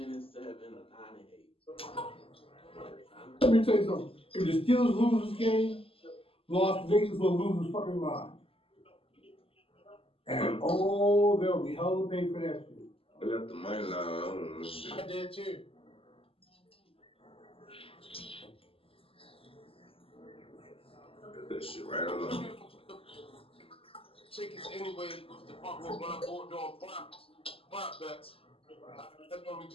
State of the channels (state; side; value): late; right; 0.27 ms